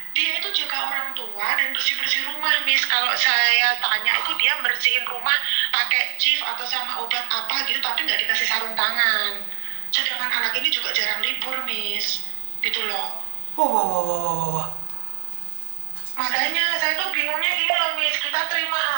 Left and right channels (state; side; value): silent; left; digital silence